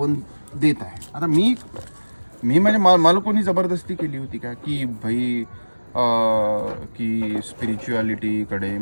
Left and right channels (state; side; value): inverted; both; correlation -1.00